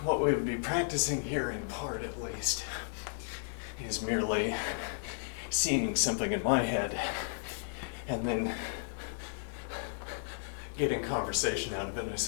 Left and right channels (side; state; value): right; silent; digital silence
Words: What we would be practicing here in part, at least, is merely seeing something in my head and then getting conversation out of it, I